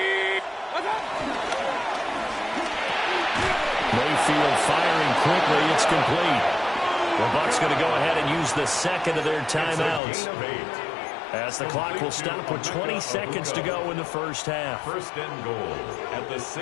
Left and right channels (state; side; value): drops out; right; at 10.0 s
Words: Mayfield firing quickly. It's complete. The Bucs going to go ahead and use the second of their timeouts, as the clock will stop with 20 seconds to go in the first half. First and goal at the